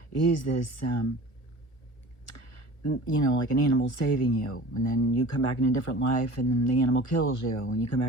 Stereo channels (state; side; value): late; right; 1.4 ms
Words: is this like an animal saving you, and then you come back in a different life, and then the animal kills you, and you come